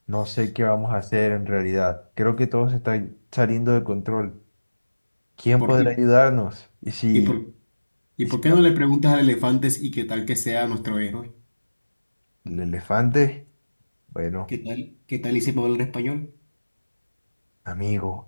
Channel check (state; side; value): inverted; both; correlation -1.00